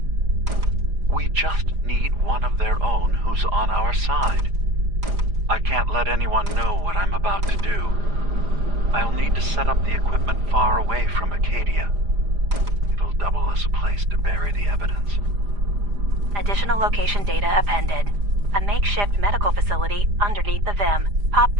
We just need one of their own who's on our side. I can't let anyone know what I'm about to do. I'll need to set up the equipment far away from Acadia. It'll double as a place to bury the evidence. Additional location data appended. A makeshift medical facility underneath the VIM. Pop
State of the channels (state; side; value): late; left; 4.9 ms